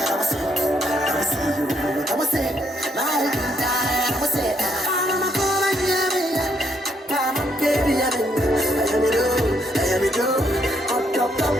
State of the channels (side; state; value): both; normal; correlation 0.73